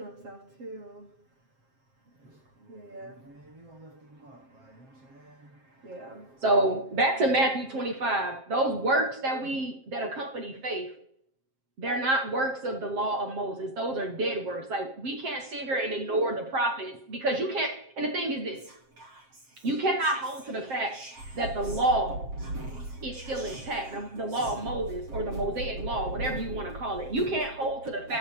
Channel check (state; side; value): late; left; 7.6 ms